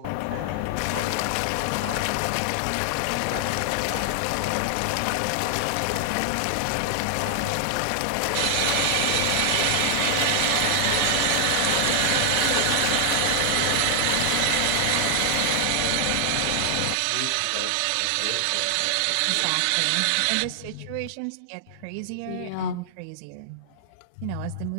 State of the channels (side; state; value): both; different; correlation -0.01